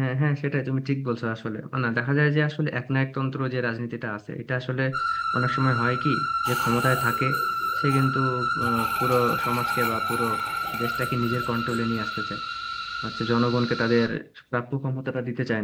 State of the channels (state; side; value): identical; both; correlation 1.00